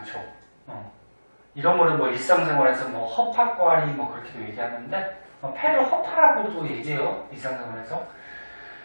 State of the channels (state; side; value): inverted; both; correlation -1.00